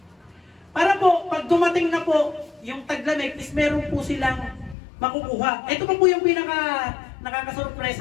Para po, pag dumating na po yung taglamig, is meron po silang makukuha. Ito pa po yung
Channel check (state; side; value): drops out; right; at 4.8 s